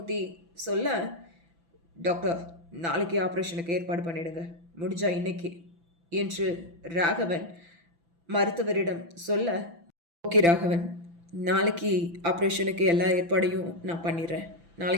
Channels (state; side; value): late; left; 6.0 ms